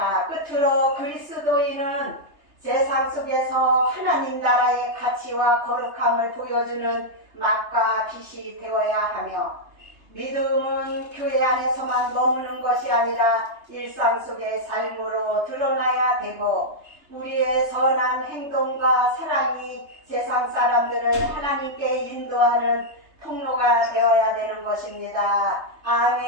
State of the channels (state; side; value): late; left; 3.3 ms